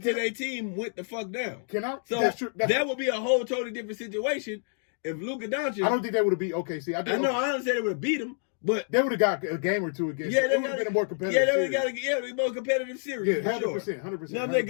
to their team went the fuck down. Can I? So that's true. that would be a whole totally different situation if Luka Doncic. I don't think that would have beat OKC. I know. I don't say they would have beat him, but They would have got a game or two against. yeah, It would have been a more competitive. Yeah, they would series. have got a more competitive series. Yeah, for 100%, sure. 100%. Now,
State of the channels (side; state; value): right; silent; 59 dB below the other